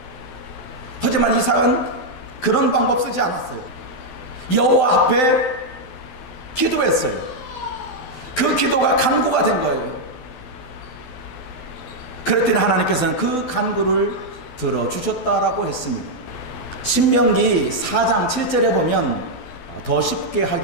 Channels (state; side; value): late; right; 12 ms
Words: 하지만 이삭은 그런 방법 쓰지 않았어요. 여호와 앞에 기도했어요. 그 기도가 간구가 된 거예요. 그랬더니 하나님께서는 그 간구를 들어주셨다라고 했습니다. 신명기 4장 7절에 보면 더 쉽게